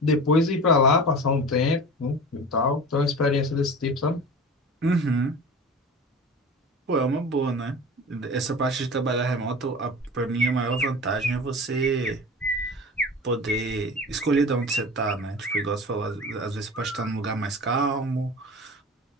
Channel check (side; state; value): both; normal; correlation 0.35